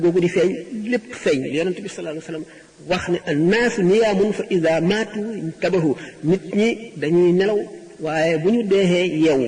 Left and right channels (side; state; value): both; identical; correlation 1.00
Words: googu di feeñ lépp feeñ yonent bi sallallahu alayhi wasallam wax ne annaasu niyaamun fa ida maatu intabahu nit ñi dañuy nelaw waaye bu ñu deexee yeewu